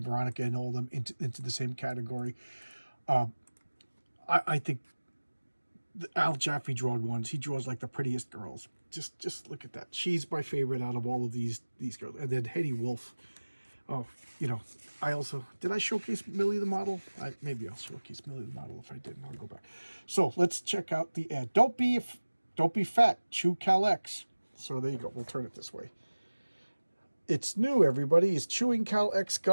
Veronica and all of them into the same category. I think Al Jaffe drawn ones. He draws like the prettiest girls. Just look at that. She's my favorite out of all of these girls. And then Hetty Wolf. Oh, I also did I showcase Millie the model? Maybe I'll showcase Millie the model. If I didn't, I'll go back. So let's check out the ad. Don't be fat. Chew Cal X. So there you go. We'll turn it this way. It's new, everybody. It's chewing Cal X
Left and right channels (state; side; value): inverted; both; correlation -1.00